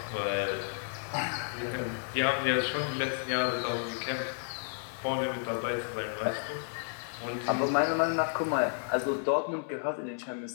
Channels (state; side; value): silent; right; 57 dB below the other